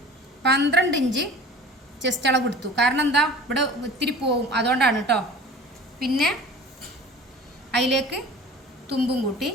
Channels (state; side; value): normal; both; correlation 0.42